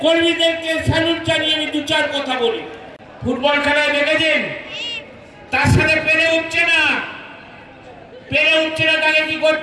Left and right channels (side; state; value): both; identical; correlation 1.00